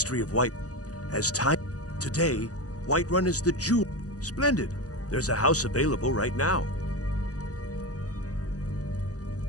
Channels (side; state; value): right; late; 0.67 ms